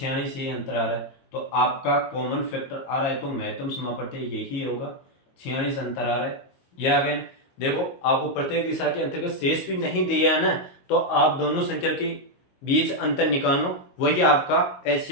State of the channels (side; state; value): right; late; 22 ms